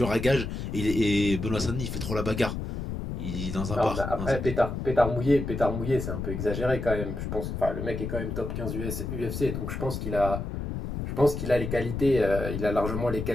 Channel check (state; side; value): noise; left; rumble, 5 dB below the sound